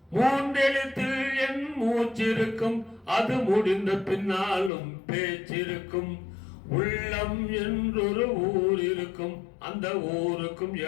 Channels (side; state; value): right; drops out; at 4.7 s